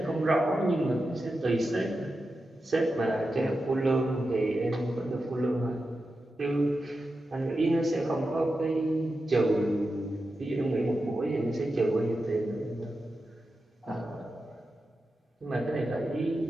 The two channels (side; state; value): both; normal; correlation 0.90